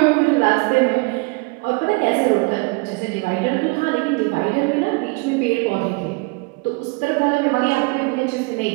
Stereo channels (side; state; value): left; quieter; 28.7 dB